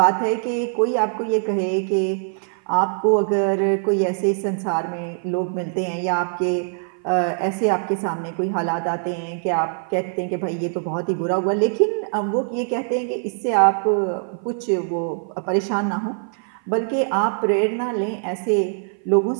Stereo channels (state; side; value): silent; left; 56 dB below the other